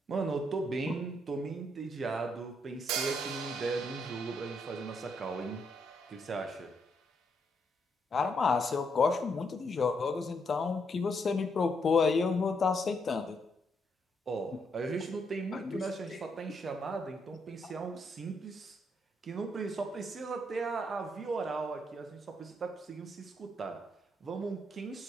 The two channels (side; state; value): both; normal; correlation 0.76